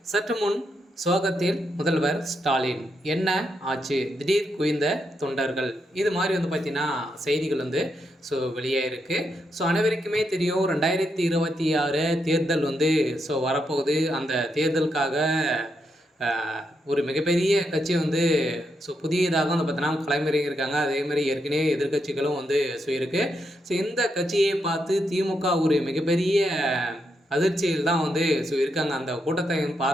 சற்று முன் சோகத்தில் முதல்வர் ஸ்டாலின், என்ன ஆச்சு, திடீர் குவிந்த தொண்டர்கள், இது மாதிரி பார்த்தீங்கன்னா செய்திகள் வெளியாயிருக்கு. அனைவருக்குமே தெரியும், 2026 தேர்தல் வரப்போகுது. அந்த தேர்தலுக்காக ஒரு மிகப்பெரிய கட்சி புதியதாக பார்த்தீங்கன்னா களமிறங்கியிருக்காங்க. அதேமாதிரி ஏற்கனவே எதிர்க்கட்சிகளும் இருக்கு. இந்த கட்சியை பார்த்து திமுக ஒரு மிகப்பெரிய அதிர்ச்சியில் தான் இருக்காங்க. அந்த கூட்டத்தை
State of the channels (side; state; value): both; normal; correlation 0.81